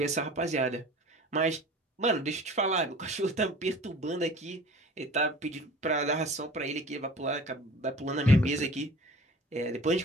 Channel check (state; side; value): normal; both; correlation 0.44